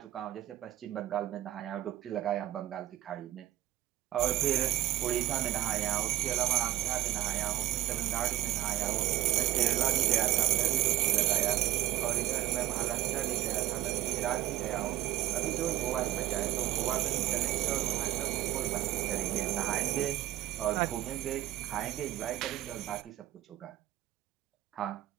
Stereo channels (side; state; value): left; quieter; 14.5 dB